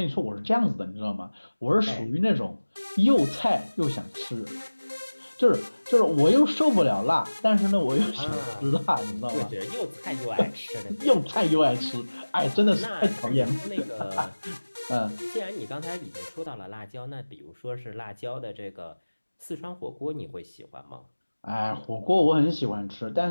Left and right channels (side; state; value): both; inverted; correlation -1.00